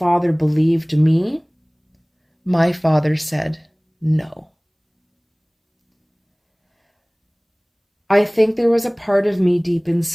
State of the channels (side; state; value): both; identical; correlation 1.00